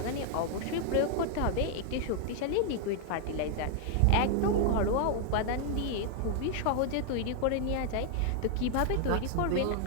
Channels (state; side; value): different; both; correlation 0.00